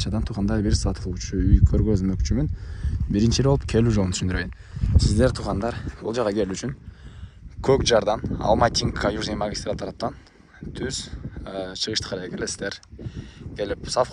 туугандар бир сатылуучу үй көргөзмөкчүмүн. Биринчи болуп келүү жолун түшүндүрөйүн. Сиздер туугандар бул жака келүү үчүн Көк жардан Алматинка Южный магистраль тараптан түз чыгышты карай келесиздер. Келип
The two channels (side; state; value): both; identical; correlation 1.00